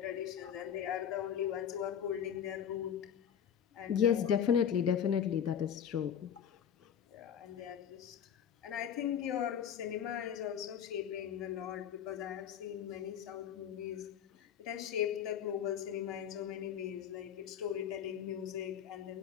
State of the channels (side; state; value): right; quieter; 8.7 dB